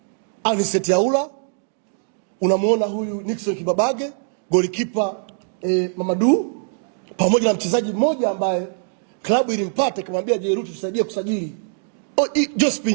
Anicet Yaula, unamuona huyu Nixon Kibabage, golikipa Mamadou, pamoja na mchezaji mmoja ambaye klabu ilimpata kumwambia Jeruti tusaidie kusajili,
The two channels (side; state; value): left; silent; digital silence